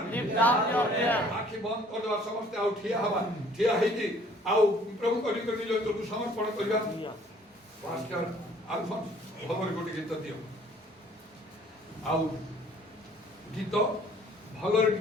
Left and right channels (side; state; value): both; normal; correlation 0.56